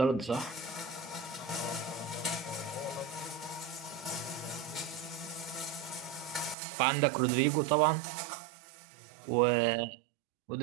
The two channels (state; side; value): drops out; left; at 6.6 s